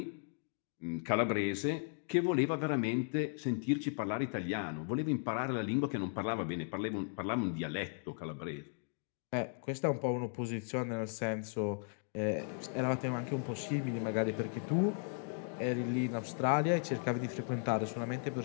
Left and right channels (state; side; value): silent; right; 54 dB below the other